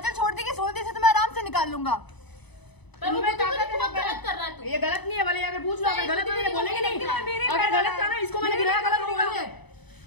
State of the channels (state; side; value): late; right; 0.99 ms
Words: छोड़ देगी, सोच दी से तो मैं आराम से निकाल लूंगा। इनमें ताकत है। गलत कर रहा है तू। ये गलत नहीं है, भले अगर पूछ लो, अगर गलत है तो बोलेंगे नहीं। अगर गलत था ना, इसको मैंने गिराया, गलत नहीं बोलेंगे।